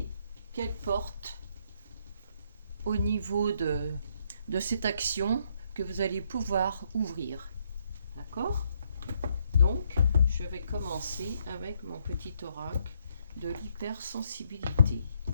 qu'elle porte au niveau de cette action que vous allez pouvoir ouvrir. D'accord? Donc, je vais commencer avec mon petit oracle de l'hypersensibilité.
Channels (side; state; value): both; inverted; correlation -0.73